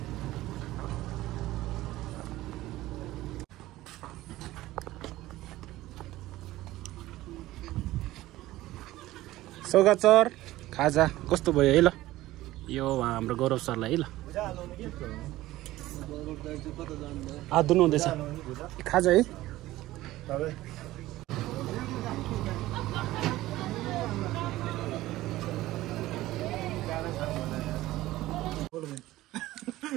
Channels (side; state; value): left; quieter; 16.5 dB